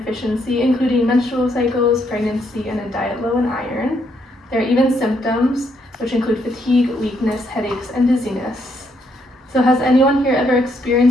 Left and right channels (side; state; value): both; normal; correlation 0.74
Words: including menstrual cycles, pregnancy, and a diet low in iron. There are even symptoms, which include fatigue, weakness, headaches, and dizziness. So has anyone here ever